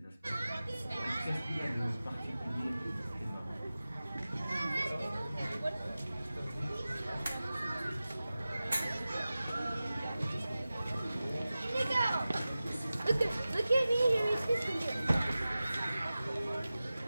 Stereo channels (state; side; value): inverted; both; correlation -0.96